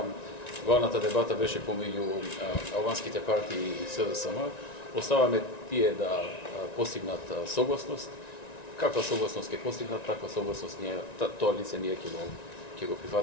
главната дебата беше помеѓу албанските партии и СДСМ, оставаме тие да постигнат согласност. Каква согласност ќе постигнат, таква согласност тоа лице ние ќе го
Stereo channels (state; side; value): late; right; 1.9 ms